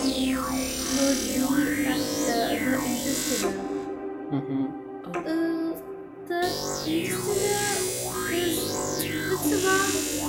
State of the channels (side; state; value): both; identical; correlation 1.00